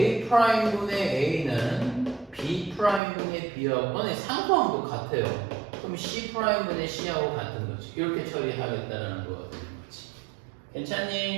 프라임분의 A는 B 프라임분의 B하고 상수항도 같아요. 그럼 C 프라임분의 C하고 같은 거지. 이렇게 처리하겠다라는 거가 되는 거지.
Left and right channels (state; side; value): drops out; left; at 3.0 s